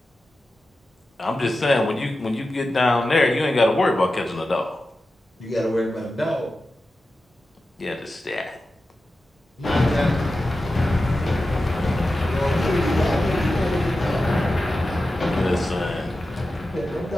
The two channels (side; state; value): both; normal; correlation 0.93